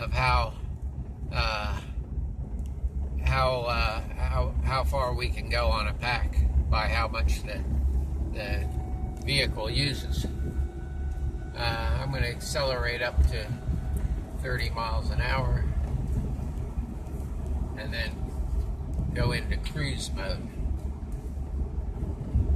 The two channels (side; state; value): both; identical; correlation 1.00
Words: how far we can go on a pack by how much the vehicle uses. I'm going to accelerate up to 30 miles an hour and then go into cruise mode.